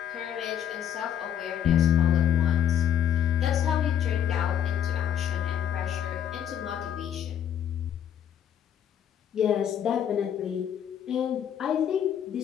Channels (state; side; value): quieter; right; 9.5 dB